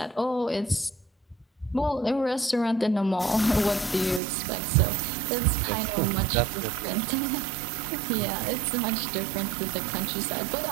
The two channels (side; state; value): left; drops out; at 4.2 s